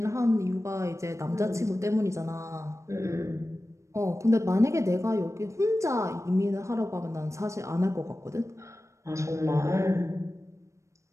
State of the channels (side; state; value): left; late; 0.15 ms